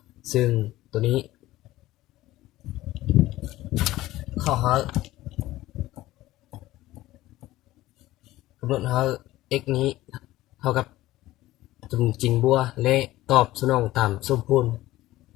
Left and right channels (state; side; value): quieter; right; 16.4 dB